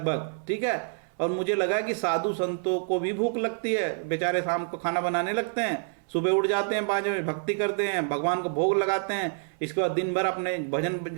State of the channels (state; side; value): silent; left; 60 dB below the other